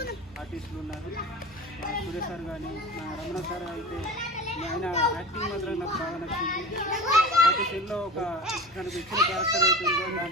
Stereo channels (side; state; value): both; normal; correlation 0.35